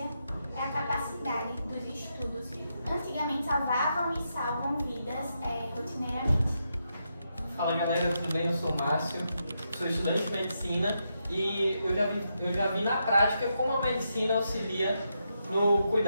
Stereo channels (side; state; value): both; inverted; correlation -0.83